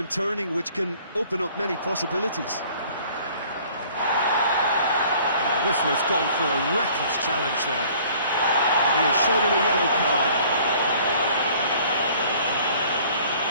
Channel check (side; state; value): both; inverted; correlation -0.53